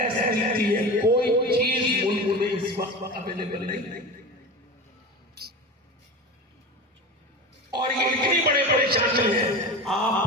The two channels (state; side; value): normal; both; correlation 0.28